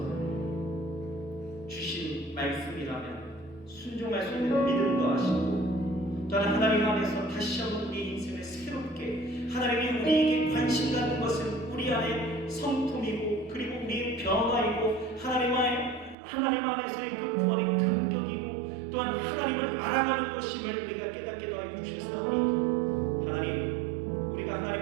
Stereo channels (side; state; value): left; drops out; at 16.2 s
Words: 주신 말씀이라면 순종할 수 있는 믿음도 하시고, 또한 하나님 안에서 다시 한번 우리 인생을 새롭게, 하나님이 우리에게 관심 갖는 것은 우리 안에 성품이고 그리고 우리의 변화이고 하나님 안에서의 그 구원의 감격이고 또한 하나님을 알아가는 것임을 우리가 깨닫게 하여 주셨사오니, 하나님 우리가